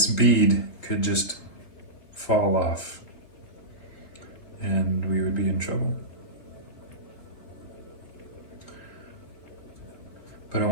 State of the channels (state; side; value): late; right; 3.9 ms